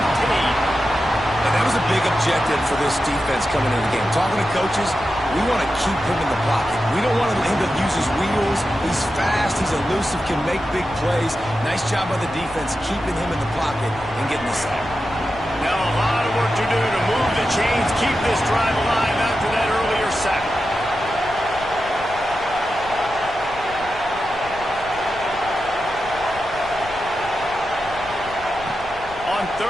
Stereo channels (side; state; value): left; noise; rumble, 17 dB below the sound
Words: And that was a big objective for this defense coming into the game. Talking to coaches, we want to keep him in the pocket. We don't want him to use his wheels. He's fast, he's elusive, can make big plays. Nice job by the defense keeping him in the pocket and getting the sack. Now a lot of work to do to move the chains, keep this drive alive after that earlier sack. On